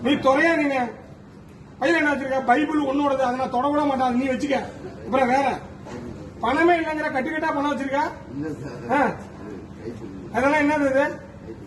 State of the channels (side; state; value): both; identical; correlation 1.00